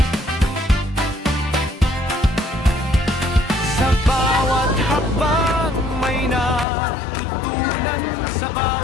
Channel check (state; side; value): drops out; right; at 6.7 s